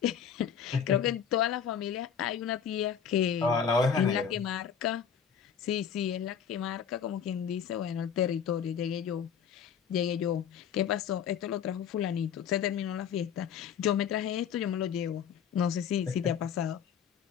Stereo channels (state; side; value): quieter; right; 7.8 dB